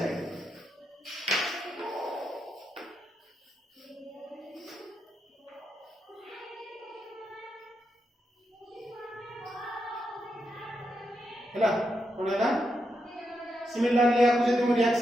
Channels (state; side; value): normal; both; correlation 0.84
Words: हैला कोनला सिमिलरली आपको जदि हम